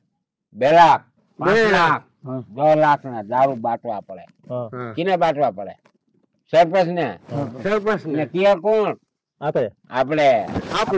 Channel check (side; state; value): both; identical; correlation 1.00